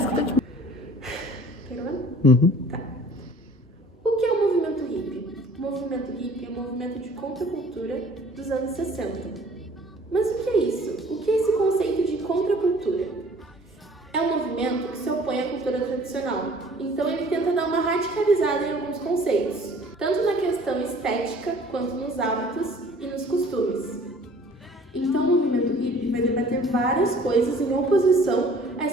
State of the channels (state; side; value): normal; both; correlation 0.52